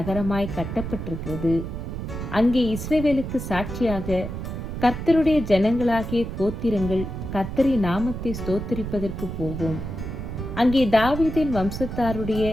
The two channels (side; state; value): right; noise; rumble, 6 dB below the sound